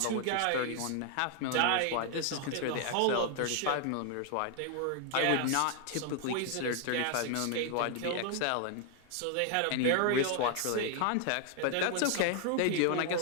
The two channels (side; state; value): both; different; correlation 0.00